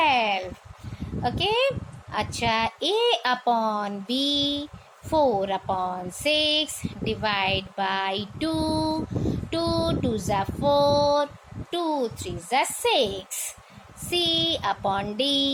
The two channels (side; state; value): both; identical; correlation 1.00